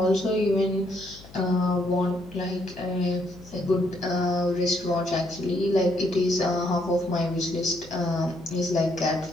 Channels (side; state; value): left; noise; hum, 20 dB below the sound